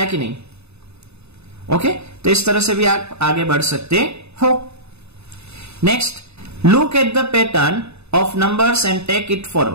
कि नहीं। ओके, तो इस तरह से भी आप आगे बढ़ सकते हो। Next, look at the pattern of numbers and take it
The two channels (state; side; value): late; left; 0.80 ms